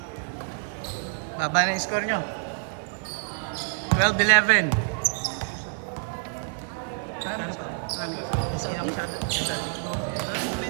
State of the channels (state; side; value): silent; left; 60 dB below the other